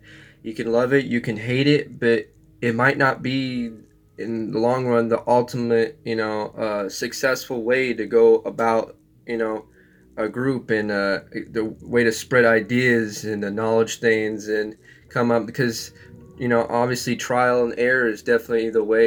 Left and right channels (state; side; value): identical; both; correlation 1.00